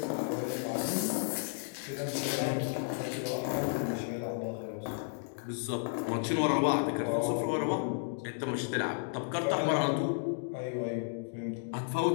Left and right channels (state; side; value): silent; right; digital silence